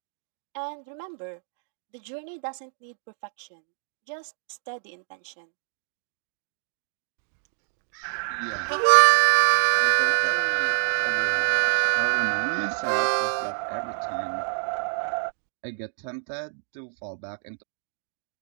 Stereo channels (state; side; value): silent; left; digital silence